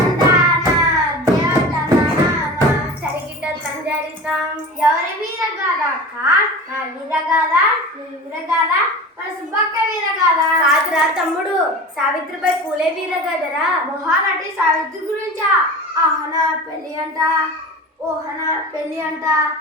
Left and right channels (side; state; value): both; normal; correlation 0.33